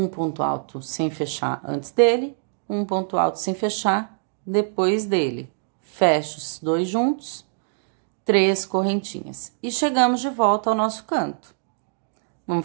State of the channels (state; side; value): silent; left; digital silence